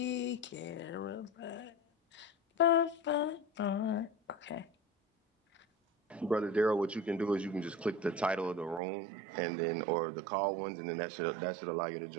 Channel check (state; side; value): drops out; left; at 8.8 s